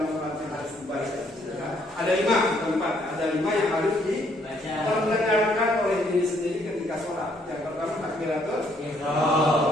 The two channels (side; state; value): both; normal; correlation 0.68